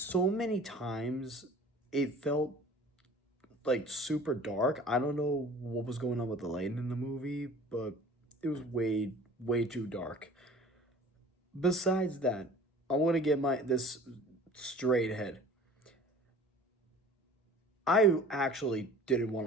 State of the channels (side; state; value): both; normal; correlation 0.45